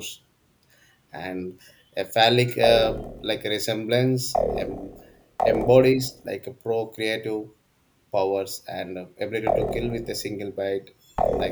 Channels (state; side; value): identical; both; correlation 1.00